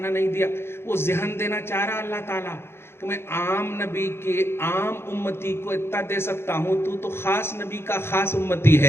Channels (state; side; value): late; right; 0.12 ms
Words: نہیں دیا. وہ ذہن دینا چاہ رہا اللہ تعالیٰ کہ میں عام نبی کے عام امتی کو اتنا دے سکتا ہوں, تو خاص نبی کا خاص امتی ہے,